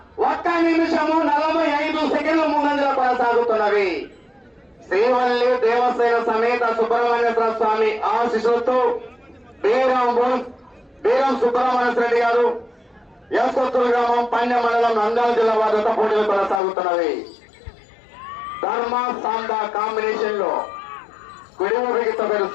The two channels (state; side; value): drops out; right; at 16.6 s